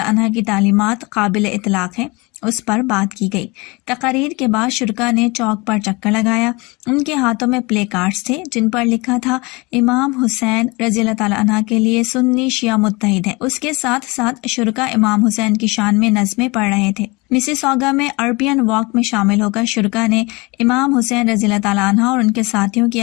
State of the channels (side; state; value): right; quieter; 25.7 dB